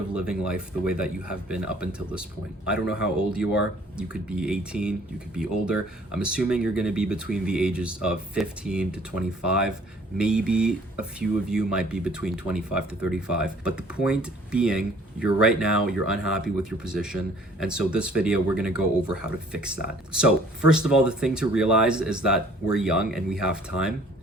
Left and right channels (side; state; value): both; normal; correlation 0.55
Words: living life the way that you have been up until this point. I don't know how old you are. You could be 18, you could be older. I'm assuming you're going to be between the ages of 15 to 25. Maybe a few of you might be between 25 to 35. But the point being, you're unhappy with your position. And so this video, we're going to go over how to fix that. So first of all, the thing to realize is that we're young and we have time